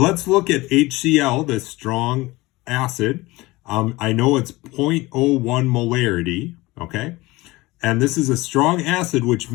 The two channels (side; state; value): right; quieter; 20.8 dB